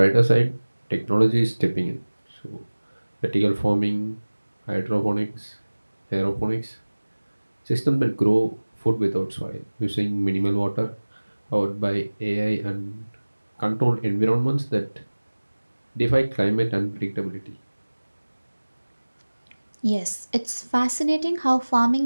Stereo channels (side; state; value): both; inverted; correlation -1.00